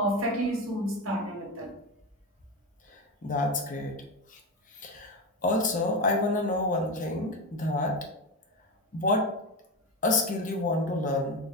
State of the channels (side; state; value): both; normal; correlation 0.18